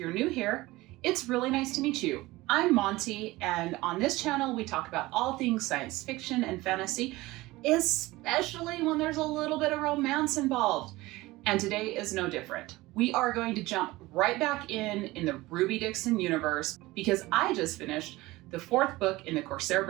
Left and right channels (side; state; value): left; quieter; 19.6 dB